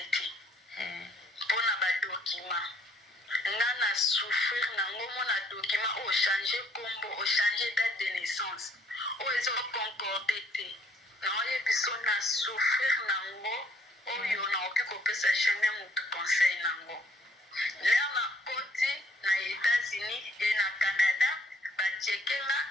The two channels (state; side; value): normal; both; correlation 0.64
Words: te mpona badokima nga na souffrir nango mona dokima oyo change kombo ochange date de naissance oyo eza concorde te naoyebiso na souffrir nango oyo naoki kopesa jamais motu conseil nango lere na koti na États-Unis e na Canada bacheke nga